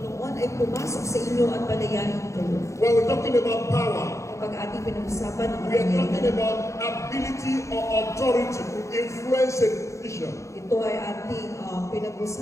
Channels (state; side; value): late; right; 0.15 ms